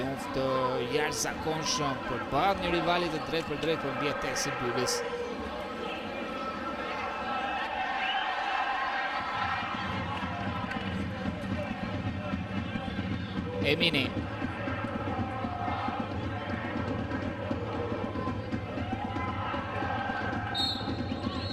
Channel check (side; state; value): both; identical; correlation 1.00